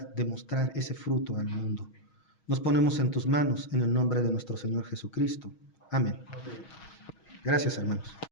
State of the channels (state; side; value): late; right; 6.3 ms